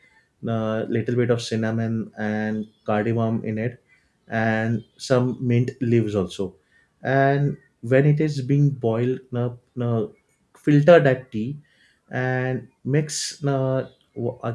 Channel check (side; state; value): both; identical; correlation 1.00